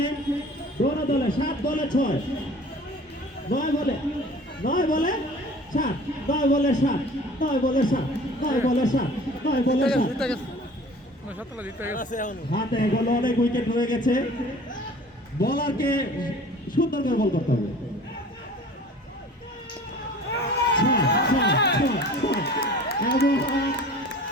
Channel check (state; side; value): normal; both; correlation 0.45